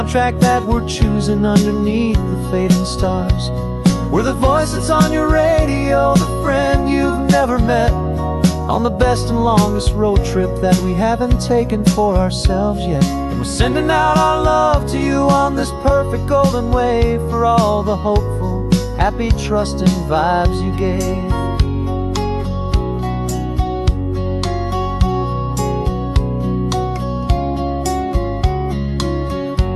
that we're choosing underneath the fading stars. We're the voice that's on your radio, the friend you've never met, on the best and longest road trip that we haven't taken for ourselves yet. And we're sending out our love to you on this perfect golden wave, for all the hopeful, happy, trusting vibes you gave.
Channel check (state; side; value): identical; both; correlation 1.00